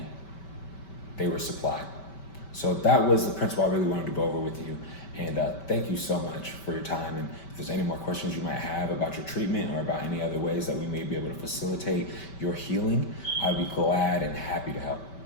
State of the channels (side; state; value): right; late; 5.2 ms